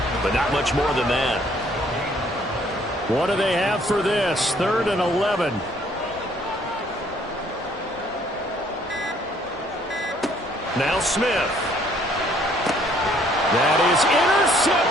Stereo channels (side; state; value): both; normal; correlation 0.63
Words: but not much more than that. What do they have for this? 3rd and 11. Now Smith. That is